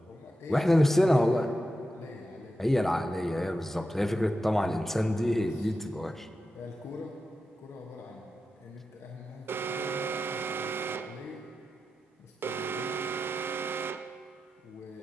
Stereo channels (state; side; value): normal; both; correlation 0.90